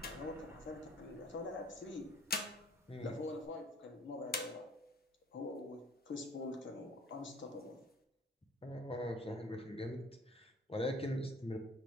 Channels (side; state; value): both; normal; correlation 0.52